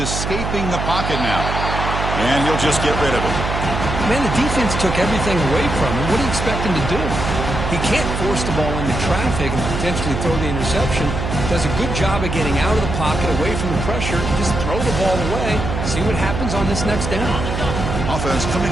the pocket now. And he'll just get rid of it. Man, the defense took everything away from him. What do you expect him to do? He can't force the ball into traffic and potentially throw the interception. Does a good job of getting out of the pocket, away from the pressure. Just throw the ball away. See what happens on this next down. Offense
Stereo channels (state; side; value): noise; right; hum, 3 dB below the sound